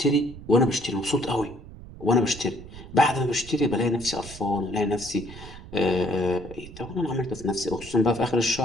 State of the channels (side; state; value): right; noise; rumble, 15 dB below the sound